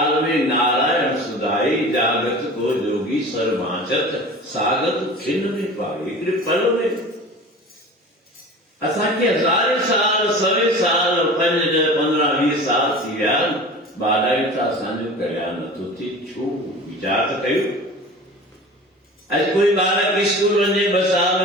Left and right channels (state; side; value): normal; both; correlation 0.38